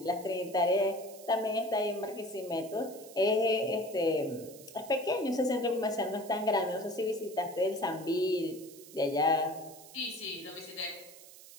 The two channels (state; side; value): noise; right; hiss, 18 dB below the sound